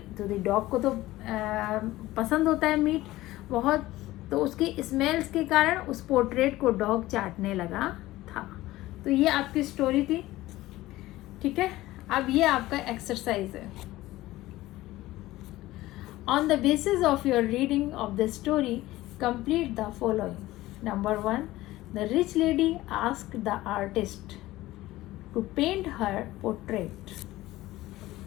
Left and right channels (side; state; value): right; quieter; 17.1 dB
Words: तो डॉग को तो पसंद होता है मीट बहुत, तो उसकी स्मेल्स के कारण उस पोर्ट्रेट को डॉग चाटने लगा था। तो ये आपकी स्टोरी थी, ठीक है। अब ये आपका एक्सरसाइज है। On the basis of your reading of the story complete the following. Number 1, the rich lady asked the artist to paint her portrait.